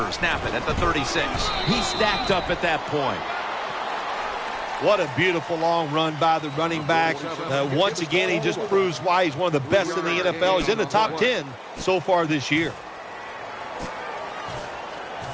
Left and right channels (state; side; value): identical; both; correlation 1.00